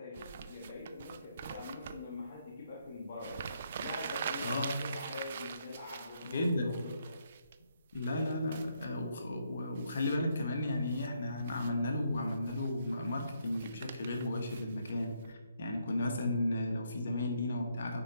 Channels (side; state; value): both; inverted; correlation -0.74